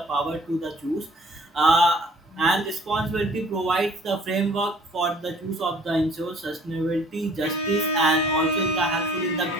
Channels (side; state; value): both; normal; correlation 0.55